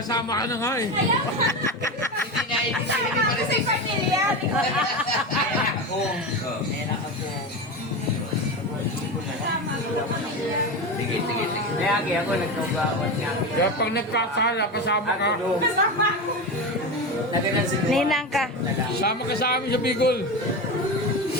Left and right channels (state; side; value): normal; both; correlation 0.21